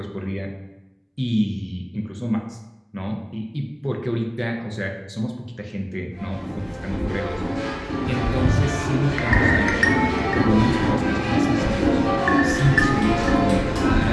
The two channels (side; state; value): both; identical; correlation 1.00